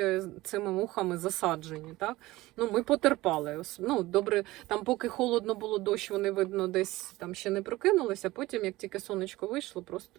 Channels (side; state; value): left; quieter; 18.7 dB